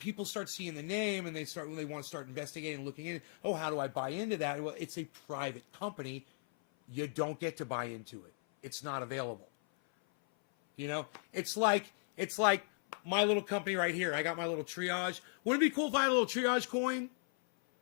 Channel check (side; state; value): right; silent; 53 dB below the other